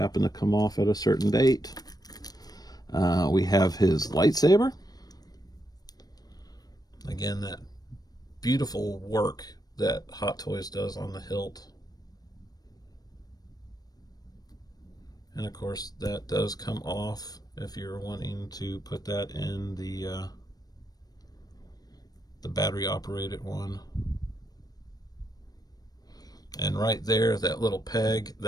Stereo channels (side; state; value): right; late; 0.19 ms